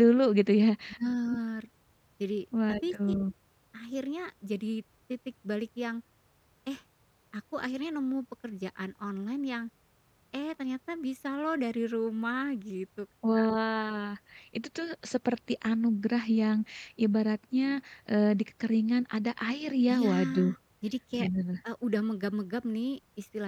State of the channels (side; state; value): both; identical; correlation 1.00